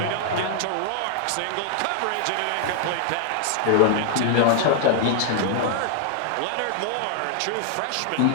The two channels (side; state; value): both; different; correlation 0.00